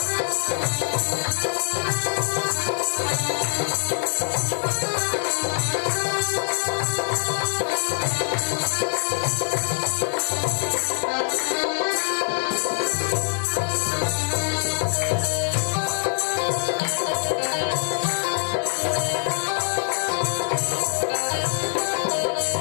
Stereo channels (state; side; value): silent; right; 59 dB below the other